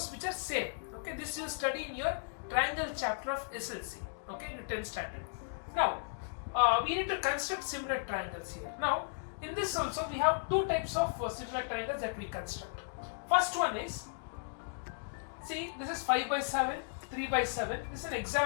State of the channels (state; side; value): silent; right; digital silence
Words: which are same. Okay, this you study in your triangle chapter of SSLC. Okay, in the 10th standard. Now we need to construct similar triangles here. Now in this also we have two types of similar triangles that we construct. First one is, see, this is 5 by 7, 3 by 7. This is an